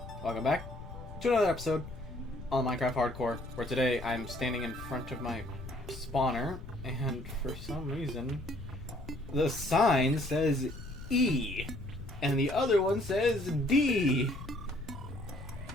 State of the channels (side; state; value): left; noise; rumble, 12 dB below the sound